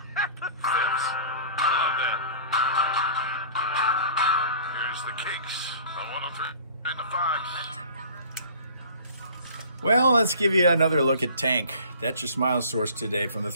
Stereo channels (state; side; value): inverted; both; correlation -0.45